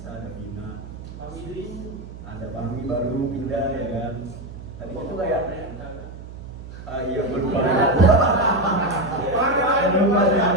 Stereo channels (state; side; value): noise; right; hum, 13 dB below the sound